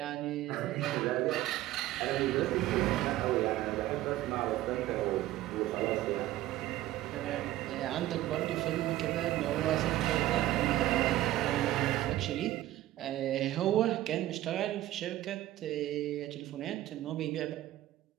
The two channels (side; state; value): left; quieter; 15.0 dB